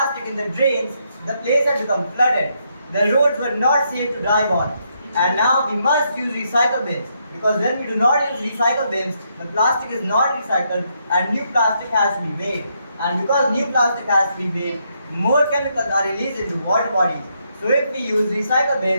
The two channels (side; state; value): both; inverted; correlation -0.77